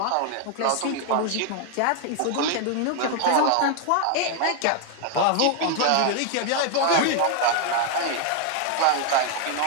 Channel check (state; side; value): different; both; correlation 0.00